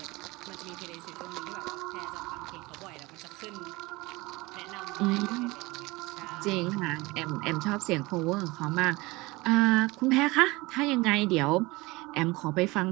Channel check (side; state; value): left; quieter; 22.2 dB